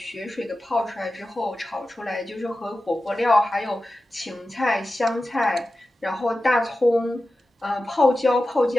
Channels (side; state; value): both; normal; correlation 0.94